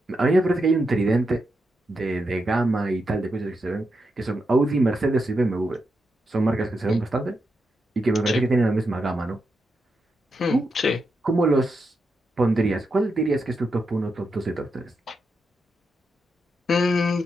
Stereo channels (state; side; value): normal; both; correlation 0.85